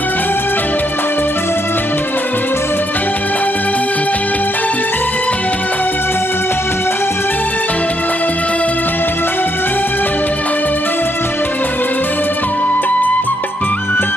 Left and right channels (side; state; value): both; normal; correlation 0.75